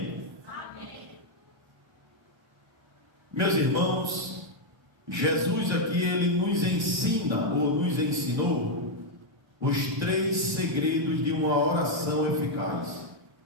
Amém. Meus irmãos, Jesus aqui, ele nos ensina, ou nos ensinou, os 3 segredos de uma oração eficaz.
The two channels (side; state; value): left; late; 1.3 ms